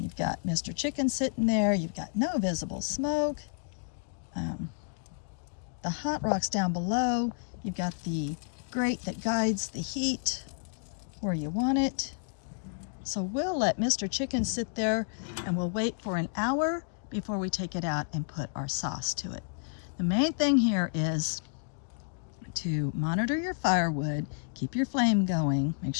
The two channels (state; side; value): silent; right; digital silence